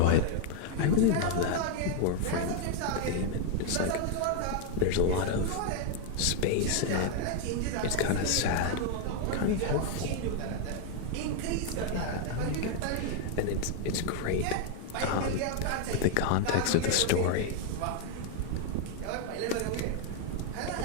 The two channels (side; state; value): both; different; correlation 0.00